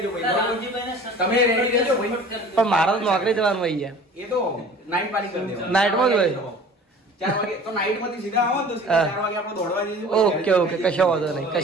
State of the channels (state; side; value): normal; both; correlation 0.45